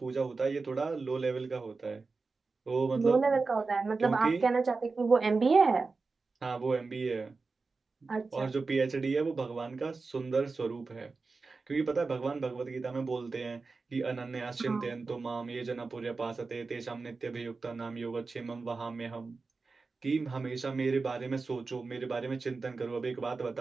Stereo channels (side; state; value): left; quieter; 4.1 dB